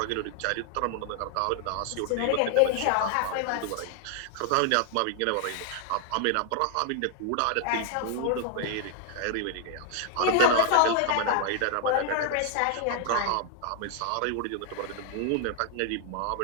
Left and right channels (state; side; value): different; both; correlation 0.00